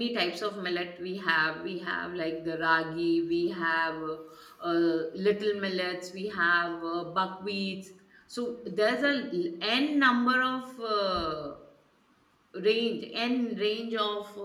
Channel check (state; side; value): identical; both; correlation 1.00